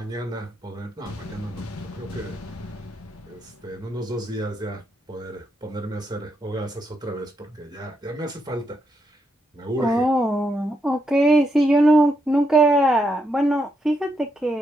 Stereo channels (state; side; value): normal; both; correlation 0.80